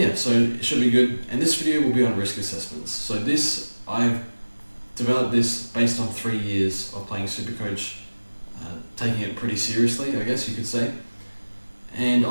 so it should be good. And this video will be on risk assessments. So I've developed this based on 3 years of playing Supercoach, taking it pretty seriously, I guess you could say. And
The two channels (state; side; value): inverted; both; correlation -1.00